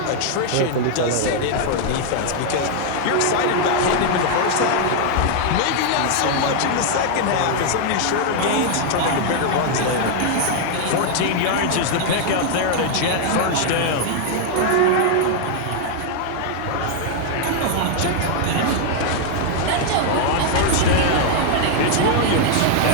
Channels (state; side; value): different; both; correlation 0.00